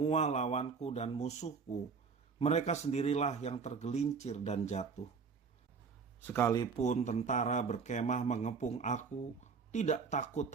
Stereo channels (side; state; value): left; quieter; 5.4 dB